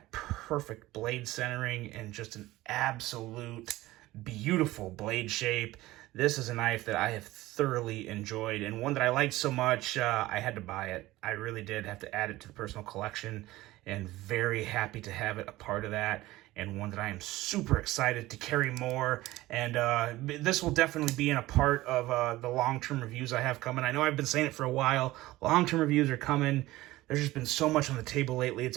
perfect blade centering and just an absolute beautiful blade shape. This is a knife that I have thoroughly enjoyed, and one that I liked so much, I had to buy it. I really did have to add it to the personal collection, and very happy to have it a part of that, and one that I am super excited to carry more. And this will definitely be in a part of the long-term reviews I have coming. I know I've been saying it for a while. Long-term reviews are coming. There's just been so much on the table lately. It's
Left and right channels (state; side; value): quieter; left; 17.6 dB